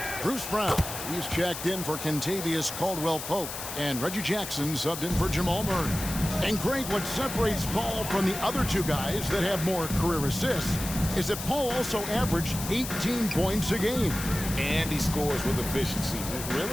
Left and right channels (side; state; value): left; noise; hiss, 7 dB below the sound